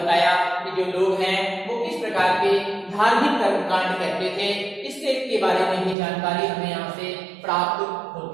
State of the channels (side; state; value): left; drops out; at 6.0 s